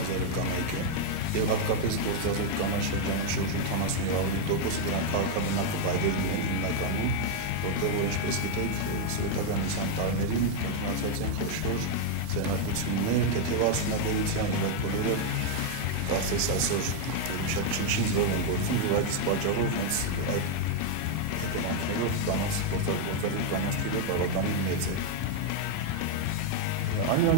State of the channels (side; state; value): both; different; correlation 0.00